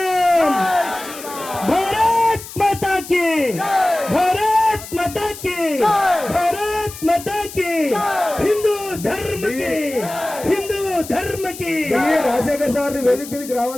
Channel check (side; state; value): left; noise; hiss, 13 dB below the sound